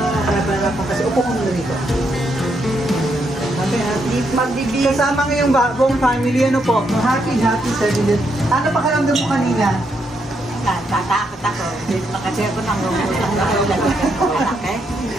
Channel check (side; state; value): both; normal; correlation 0.78